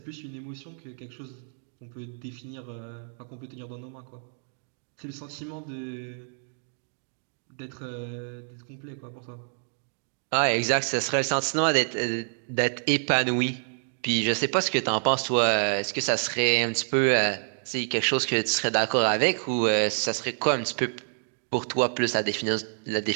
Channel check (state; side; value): silent; left; digital silence